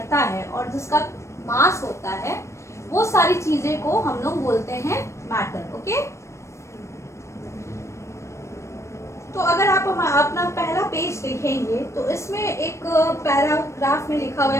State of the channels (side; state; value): right; late; 0.14 ms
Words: है और जिसका मास होता है, वो सारी चीजें को हम लोग बोलते हैं मैटर, ओके। तो अगर आप अपना पहला पेज देखेंगे तो इसमें एक पैराग्राफ में लिखा हुआ